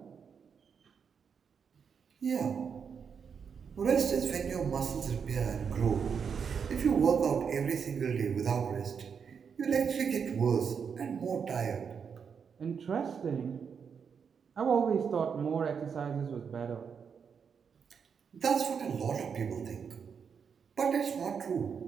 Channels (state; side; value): quieter; left; 6.6 dB